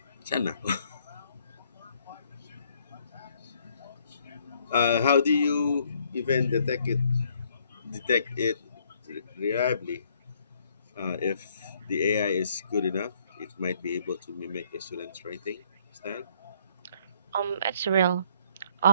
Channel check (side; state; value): both; inverted; correlation -0.65